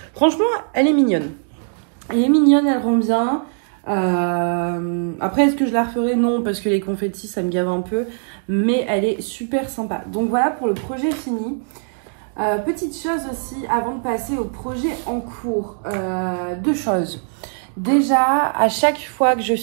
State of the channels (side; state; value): left; silent; 60 dB below the other